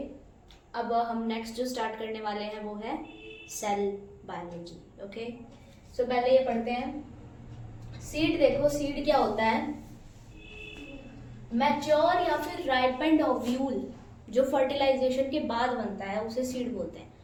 अब हम नेक्स्ट जो स्टार्ट करने वाले हैं वो है सेल बायोलॉजी। ओके, सो पहले ये पढ़ते हैं सीड। देखो सीड क्या होता है, मैच्योर या फिर राइपेंड ओव्यूल जो फर्टिलाइजेशन के बाद बनता है उसे सीड बोलते हैं।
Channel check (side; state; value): both; identical; correlation 1.00